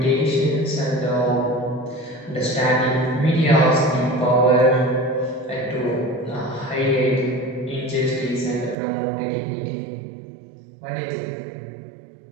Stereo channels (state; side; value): drops out; left; at 8.8 s